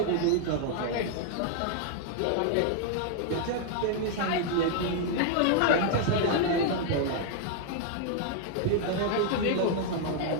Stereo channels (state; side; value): different; both; correlation 0.00